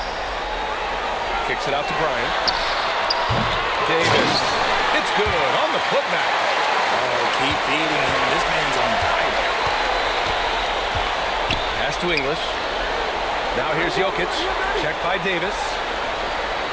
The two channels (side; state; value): both; identical; correlation 1.00